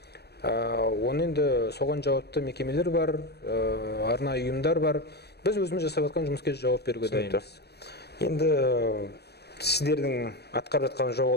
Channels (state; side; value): late; right; 0.47 ms